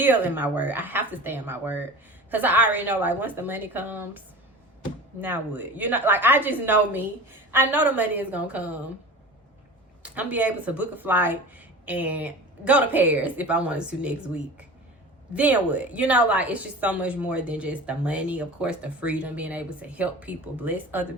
in my word. I have to stay in my word because I already know, like, once the money comes, now what? Like, I just know me. I know the money is gonna come. I'm be able to book a flight and go to Paris if I wanted to next week. Then what? Like, it's just so much more than just the money. Of course, the freedom, being able to help people, bless other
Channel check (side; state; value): both; normal; correlation 0.36